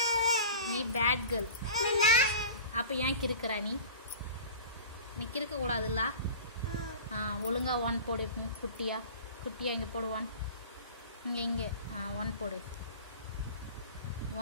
நீ பேட் கேர்ள். அப்போ ஏன் கிறுக்கிறா நீ? நீ கிறுக்க கூடாதுல்ல. ஒழுங்கா ஒன் போடு. குட்டியா குட்டியா. இங்கே போடு. ஒன். இங்கே ஒன் போடு.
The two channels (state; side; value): inverted; both; correlation -0.38